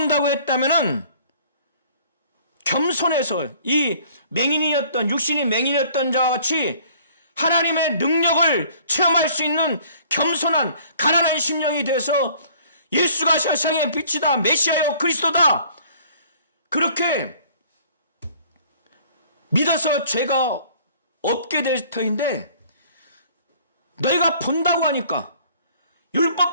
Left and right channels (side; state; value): both; inverted; correlation -0.54